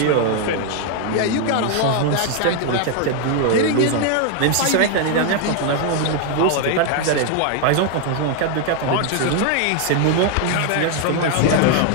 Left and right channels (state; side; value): different; both; correlation 0.00